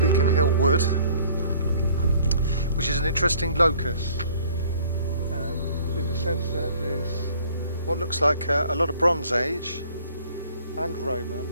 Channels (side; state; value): both; inverted; correlation -0.56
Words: Hill Wood, which is an interesting locus in the sense that there's what looks like a lot of Bronze Age and Roman